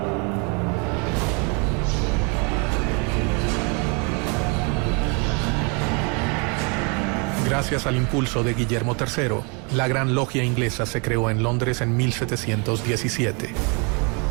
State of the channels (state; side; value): quieter; left; 32.8 dB